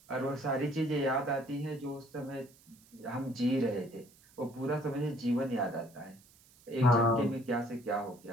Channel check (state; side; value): noise; right; hiss, 27 dB below the sound